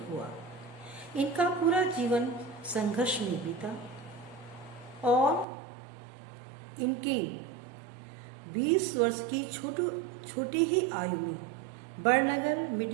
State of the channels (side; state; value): left; drops out; at 5.5 s